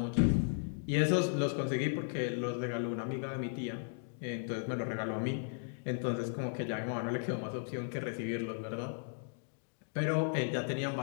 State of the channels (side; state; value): right; silent; digital silence